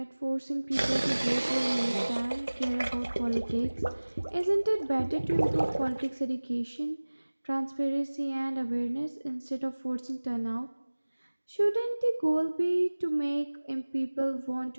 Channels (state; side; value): inverted; both; correlation -1.00